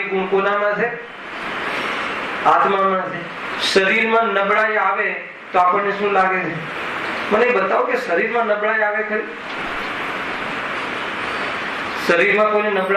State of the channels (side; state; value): both; identical; correlation 1.00